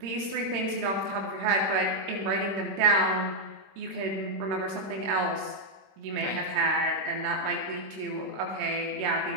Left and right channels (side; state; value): left; late; 26 ms